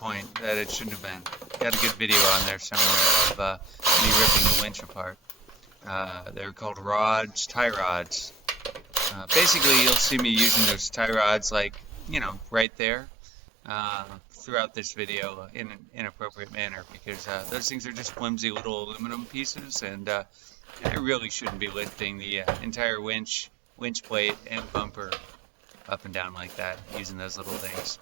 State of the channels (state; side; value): drops out; left; at 12.7 s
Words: that it shouldn't have been. Got a good video on there somewhere of me ripping the winch apart. They're called rods, tie rods. Basically, you'll see me using those tie rods, like, you know, right there throughout this video in an inappropriate manner, because those things are just flimsy little aluminum pieces, and I really shouldn't be lifting the entire winch plate and bumper up and down like that using those little things.